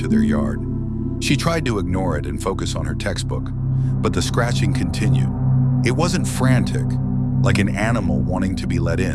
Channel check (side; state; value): both; identical; correlation 1.00